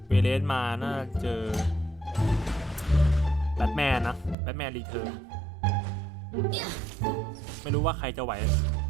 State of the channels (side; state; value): left; drops out; at 4.4 s